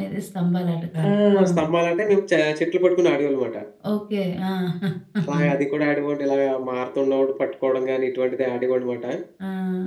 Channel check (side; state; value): both; identical; correlation 1.00